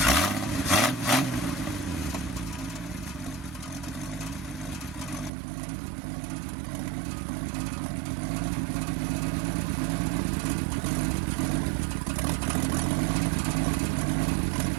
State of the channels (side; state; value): left; drops out; at 5.3 s